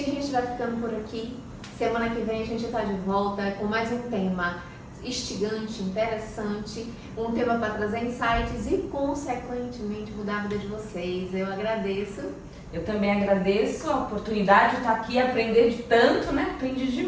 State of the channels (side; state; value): both; identical; correlation 1.00